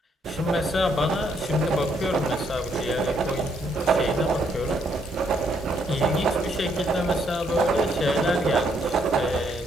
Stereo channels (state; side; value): normal; both; correlation 0.72